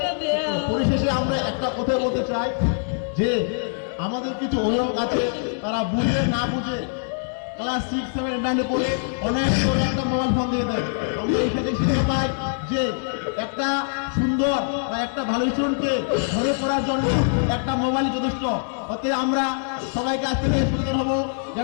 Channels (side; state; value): right; silent; digital silence